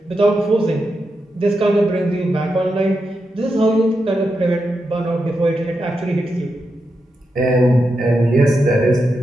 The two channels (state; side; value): normal; both; correlation 0.86